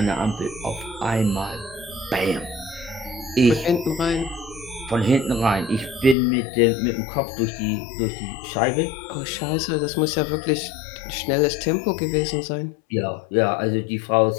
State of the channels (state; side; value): drops out; right; at 6.2 s